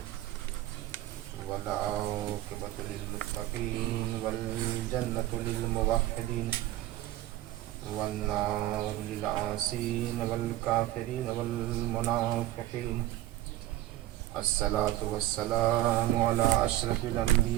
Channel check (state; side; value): quieter; left; 15.2 dB